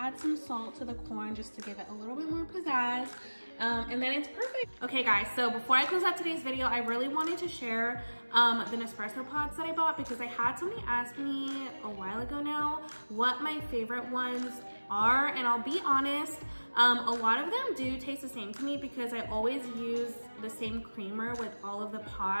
some salt to the corn just to give it a little bit more pizzazz. And then it's perfect. Okay guys, so before I close out today's video, I really wanted to share the Nespresso pods that I bought because I had somebody ask me a while ago now what my favorite ones are, and I'll be honest, a lot of them do taste the same to me because I always use the same creamer with all of the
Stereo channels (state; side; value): inverted; both; correlation -1.00